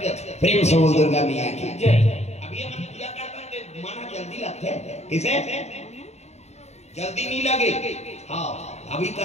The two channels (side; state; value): right; late; 0.32 ms